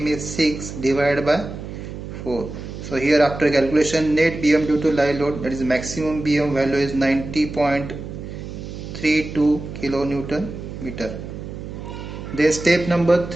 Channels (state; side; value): noise; right; hum, 10 dB below the sound